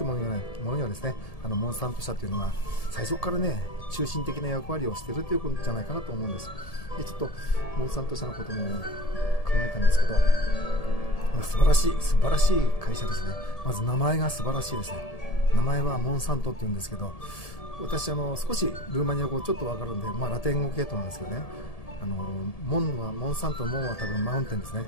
いうものにはですね、モンサント社というのが最初からね中心的な役割をしているということじゃないかなと思うんです。でちょっとモンサント社のこともえたんですけど、素晴らしい会社ですね。まず名前が素晴らしいですね。名前はモンサントって言うんですけど、私少しルーマニア語ちょっとわかるんで、ラテン語系統なんですけどね、モンサント、モンは多分マウンテンですね。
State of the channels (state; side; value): late; right; 1.7 ms